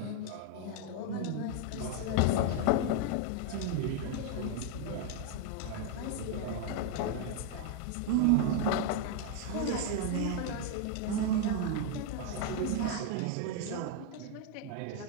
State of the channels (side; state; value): both; different; correlation 0.01